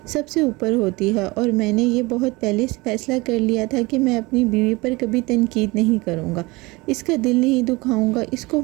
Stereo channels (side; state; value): left; quieter; 23.3 dB